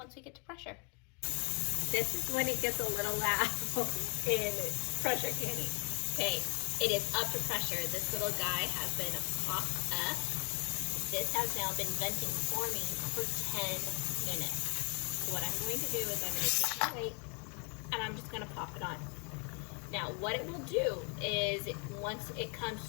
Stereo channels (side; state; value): right; quieter; 35.7 dB